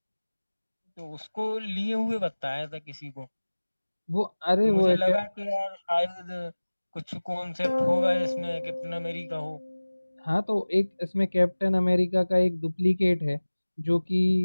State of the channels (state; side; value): inverted; both; correlation -1.00